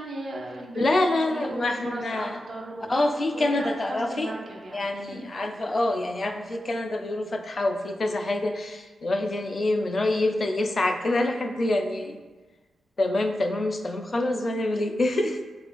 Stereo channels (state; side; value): normal; both; correlation 0.91